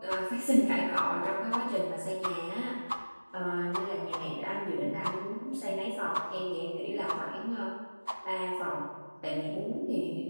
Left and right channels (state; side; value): inverted; both; correlation -1.00